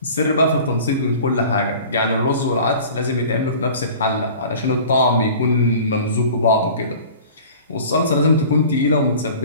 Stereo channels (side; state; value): both; inverted; correlation -0.42